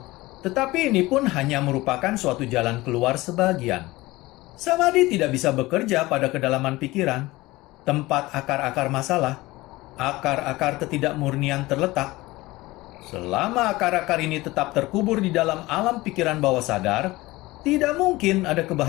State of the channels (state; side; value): quieter; right; 19.8 dB